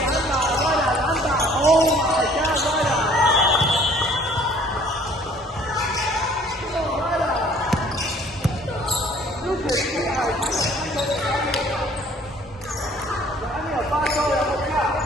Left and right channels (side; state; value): both; normal; correlation 0.55